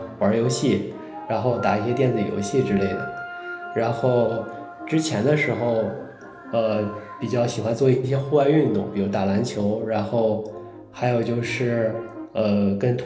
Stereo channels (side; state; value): both; identical; correlation 1.00